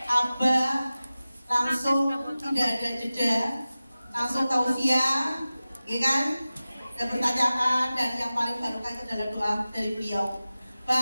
Abah langsung tidak ada jeda, langsung tausiah, ya kan? Dan pertanyaan, dan yang paling barokah itu adalah doa dari beliau.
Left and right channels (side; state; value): both; inverted; correlation -0.96